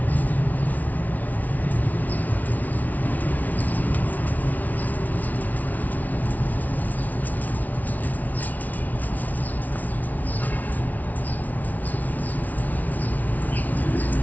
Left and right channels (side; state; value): right; late; 0.076 ms